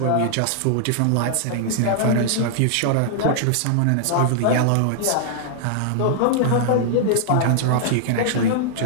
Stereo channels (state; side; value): different; both; correlation -0.01